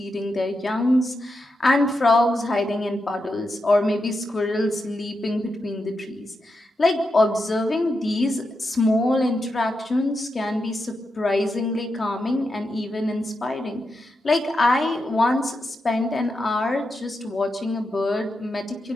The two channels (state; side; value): normal; both; correlation 0.87